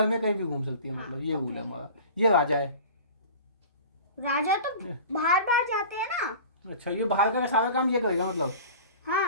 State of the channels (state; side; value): inverted; both; correlation -0.39